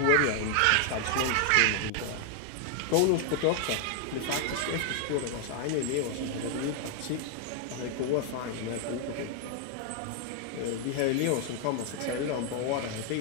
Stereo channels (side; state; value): both; different; correlation 0.00